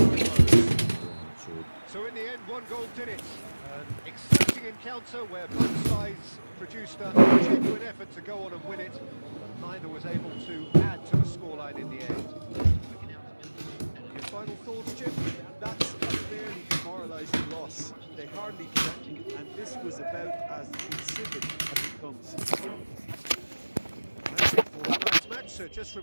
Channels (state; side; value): inverted; both; correlation -1.00